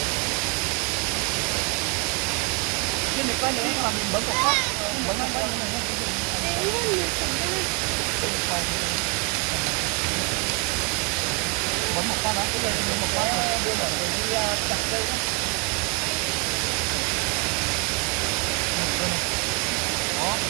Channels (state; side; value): quieter; left; 31.9 dB